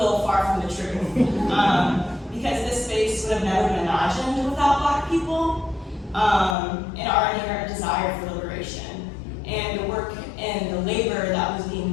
far from the truth. Because this space would have never been imagined without Black people and our inherent desire for liberation. And the work and the labor that was being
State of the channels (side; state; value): right; drops out; at 6.6 s